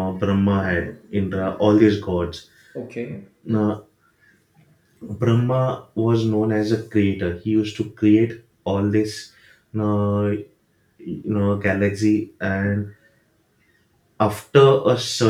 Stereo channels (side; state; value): both; identical; correlation 1.00